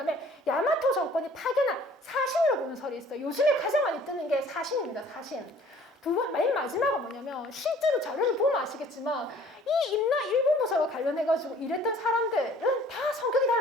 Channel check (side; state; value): both; normal; correlation 0.53